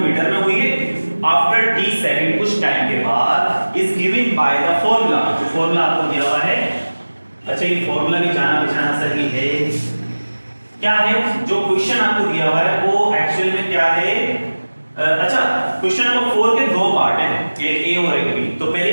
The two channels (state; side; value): inverted; both; correlation -1.00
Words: में हुई है, आफ्टर टी सेकंड कुछ टाइम के बाद, is given by the formula, जो फॉर्मूला आपको दिया हुआ है, अच्छा ये फॉर्मूला भी जाना पहचाना सही है क्या है, जो क्वेश्चन आपको दिया हुआ है वो एक्चुअल में क्या है? अच्छा, क्वेश्चन नंबर 4 के दो पार्ट हैं, एक ए और एक बी। तो पहले